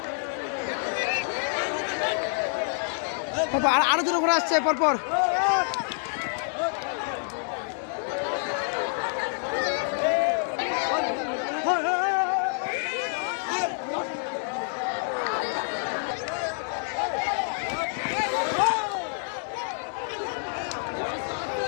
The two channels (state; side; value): silent; right; 60 dB below the other